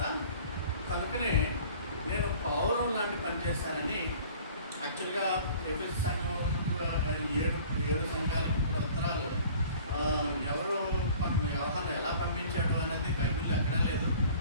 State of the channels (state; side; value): inverted; both; correlation -0.48